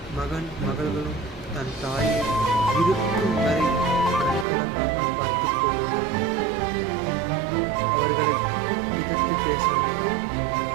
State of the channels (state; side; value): drops out; left; at 4.5 s